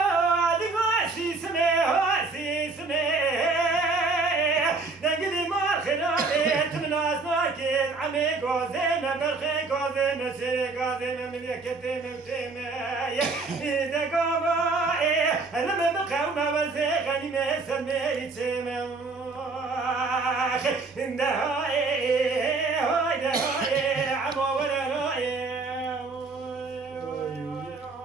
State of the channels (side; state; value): left; quieter; 3.8 dB